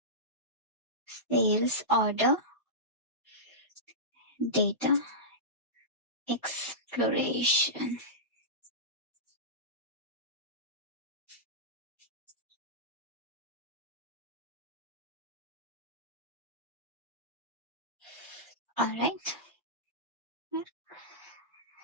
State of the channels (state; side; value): normal; both; correlation -0.16